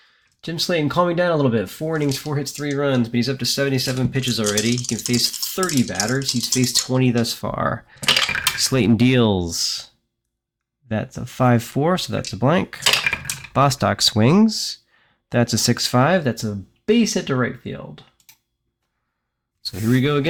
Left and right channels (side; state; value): both; identical; correlation 1.00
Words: Jim Slaton calming down a little bit. 4 innings, 4 hits, 3 runs, but he's up to 77 pitches already. He can face 30 batters. He's faced 20 thus far. Slaton deals. That's a 5-4, so that's a blank. Bostock swings. That's a 6-5. That's a base hit to right field. So here we go